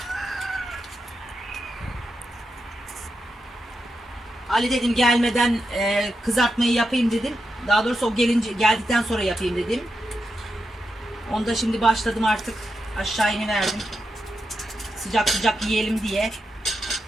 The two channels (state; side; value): normal; both; correlation 0.87